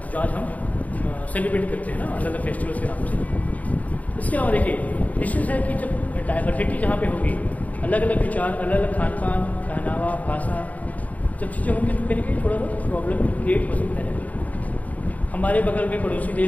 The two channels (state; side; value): late; right; 0.072 ms